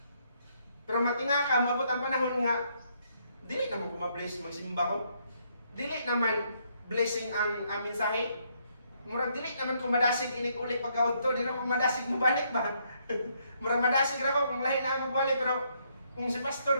Pero matinga ka, maabot ang panahon nga, dili naman kumabless magsimba ko. Dili naman blessing ang mensahe. Murag dili naman kumadasig inig-ulit pagkaudto, di na kumadasig mo balik ba? Murag madasig ra ko kung lahi na magbalik, pero kung si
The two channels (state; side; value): inverted; both; correlation -0.72